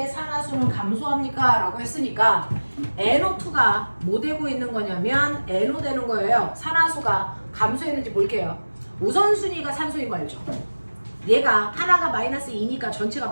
산화수는 감소합니까? 라고 했으니까 NO2가 뭐 되고 있는 거냐면 NO 되는 거예요. 산화수가 감소했는지 볼게요. 우선순위가 산소인 거 알죠? 얘가 하나가 마이너스 2니까 전체가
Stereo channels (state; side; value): inverted; both; correlation -1.00